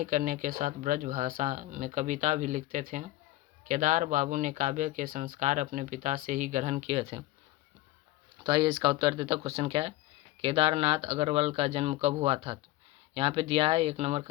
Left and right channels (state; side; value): quieter; right; 17.4 dB